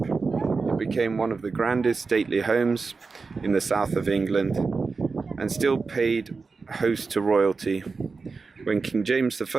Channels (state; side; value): quieter; left; 4.4 dB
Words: became one of the grandest stately homes in the south of England and still paid host to royalty. When King James